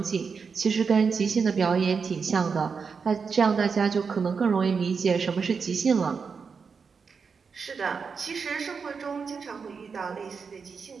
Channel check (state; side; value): quieter; left; 5.5 dB